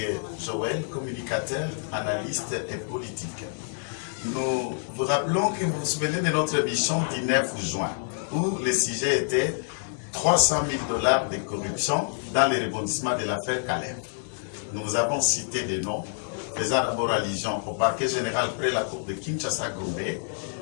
Joël, communicateur, analyste et politique. Nous vous rappelons que vous vous souvenez de notre émission du 9 juin où le sujet était 300 000 $ de corruption dans les rebondissements de l'affaire Caleb. Nous vous avons cité des noms faisant d'abord allusion au parquet général près la cour de Kinshasa-Gombe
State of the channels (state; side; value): silent; right; digital silence